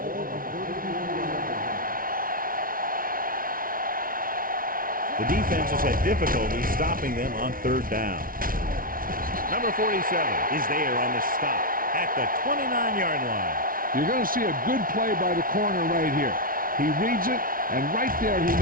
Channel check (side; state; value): left; late; 0.41 ms